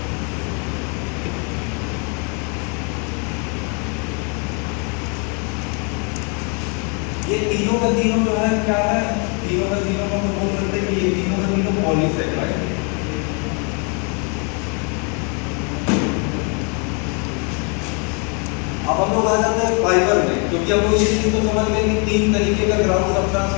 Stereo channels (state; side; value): quieter; right; 36.1 dB